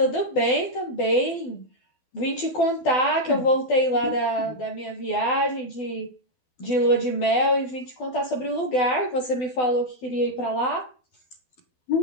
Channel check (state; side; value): late; right; 12 ms